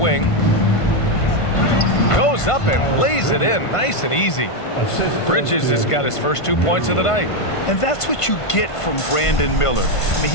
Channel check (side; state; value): right; late; 1.5 ms